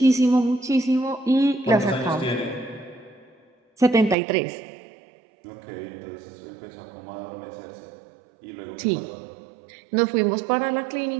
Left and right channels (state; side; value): drops out; left; at 4.2 s